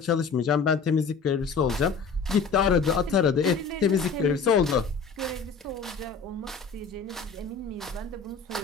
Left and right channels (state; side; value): quieter; right; 5.2 dB